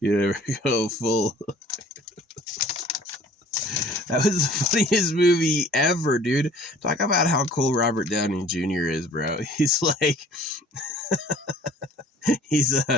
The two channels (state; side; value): normal; both; correlation 0.51